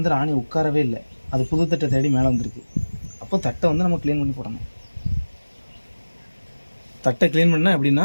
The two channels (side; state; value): both; inverted; correlation -1.00